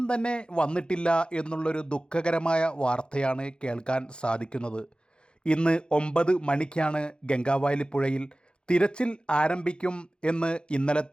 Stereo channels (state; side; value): late; right; 0.051 ms